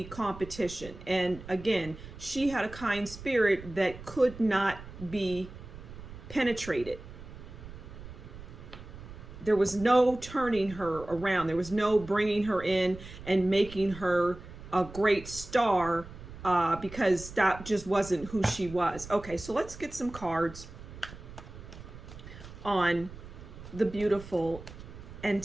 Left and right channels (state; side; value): noise; right; rumble, 15 dB below the sound